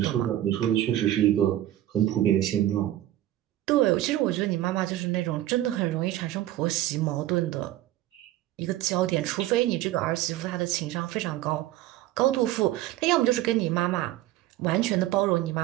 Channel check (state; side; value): quieter; left; 14.2 dB